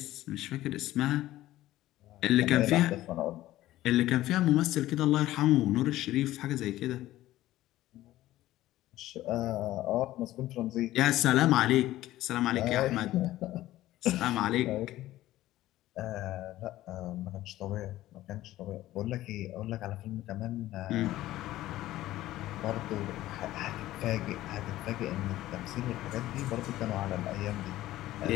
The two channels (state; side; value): quieter; right; 15.3 dB